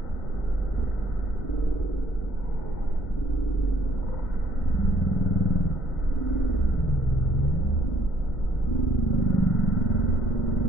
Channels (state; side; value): normal; both; correlation 0.64